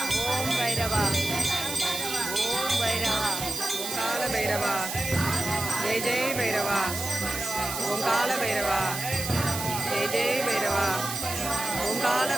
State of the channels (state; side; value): noise; right; hiss, 5 dB below the sound